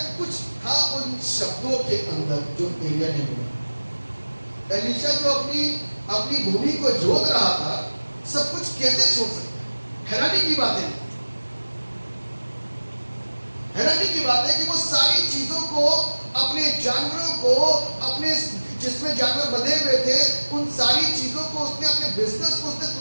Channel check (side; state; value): both; inverted; correlation -1.00